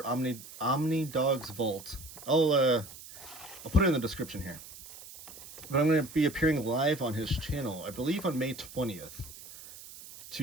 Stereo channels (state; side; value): noise; right; hiss, 16 dB below the sound